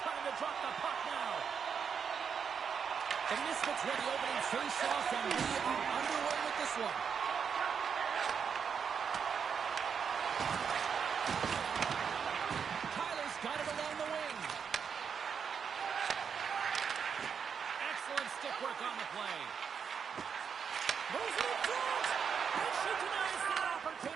time to drop the puck now. The Misfits win the opening face-off, and we are underway with this one. Tyler's got it along the wing. Excellent stick work on the play. Moves it in front, and she denies that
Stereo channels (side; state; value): left; quieter; 6.7 dB